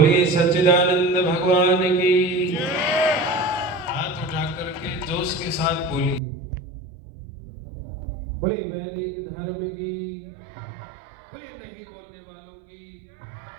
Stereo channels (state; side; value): drops out; left; at 6.2 s